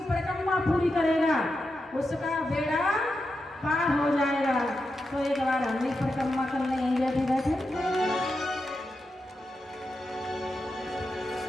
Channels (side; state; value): both; normal; correlation 0.88